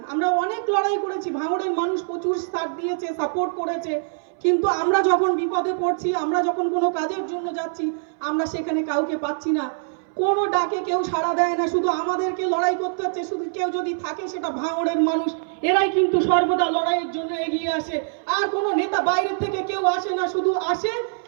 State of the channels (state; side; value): silent; left; 60 dB below the other